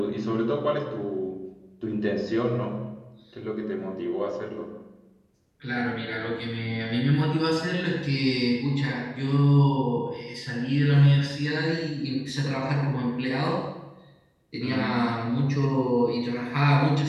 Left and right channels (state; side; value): identical; both; correlation 1.00